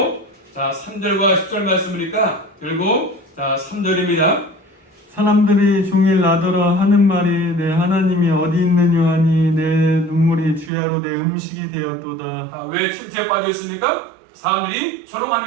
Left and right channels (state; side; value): drops out; left; at 10.7 s